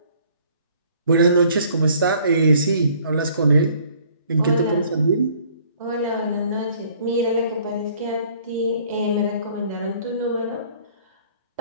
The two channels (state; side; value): inverted; both; correlation -0.58